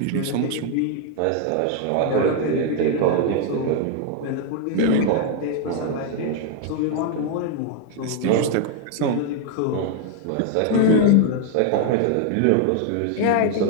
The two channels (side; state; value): both; different; correlation 0.00